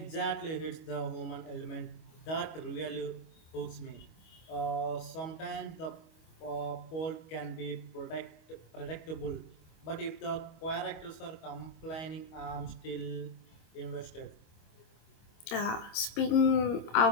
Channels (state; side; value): late; right; 25 ms